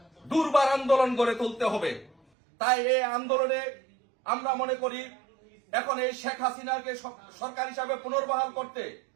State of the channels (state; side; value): drops out; left; at 2.1 s